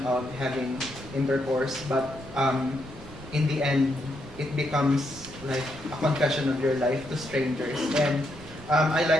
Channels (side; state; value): right; noise; rumble, 17 dB below the sound